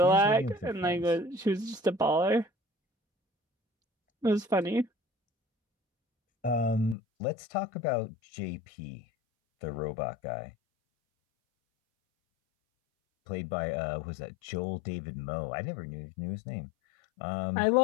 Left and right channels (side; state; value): right; drops out; at 7.0 s